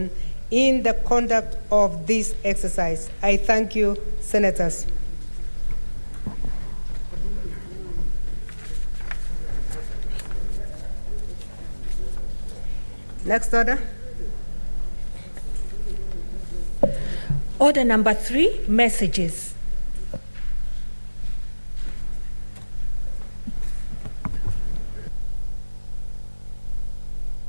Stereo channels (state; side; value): inverted; both; correlation -1.00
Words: in the conduct of this exercise. I thank you, Senators. Next order. Order number 3, messages.